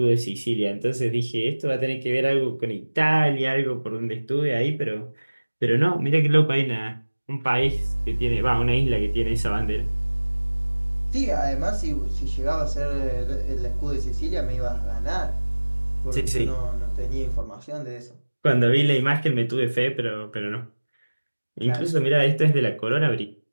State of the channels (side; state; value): both; inverted; correlation -1.00